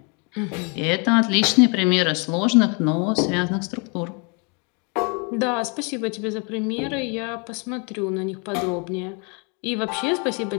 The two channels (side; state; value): right; quieter; 34.4 dB